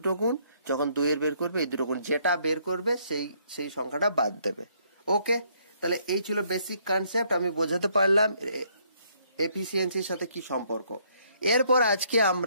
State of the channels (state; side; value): inverted; both; correlation -0.68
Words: গুণ, যখন 2 বের করবে এই দুটো গুণ, যেটা বের করবে সেই সংখ্যাটা বাদ দেবে। ওকে, তাহলে এই ছিল বেসিক কনসেপ্ট। আমি বোঝাতে পারলাম এফিসিয়েন্সির সাথে কি সম্পর্ক। এরপর আজকে